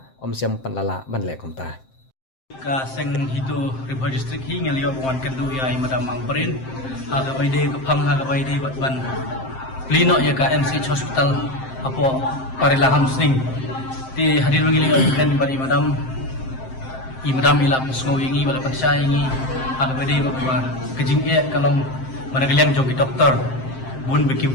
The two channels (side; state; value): right; late; 7.7 ms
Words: om siam panlala ban le komta ka seng hito Haribhoi district hi ngelio wan kendu ya madam Amperin haga baide ka phang haga baide bat ban plino ya ka MCH hospital apo parilaham sning ti hadir mengili kan bari madam ila pesngo ingi bala pansa ingi aga bede ba kejing e kalong managaliang jong doktor bun bekim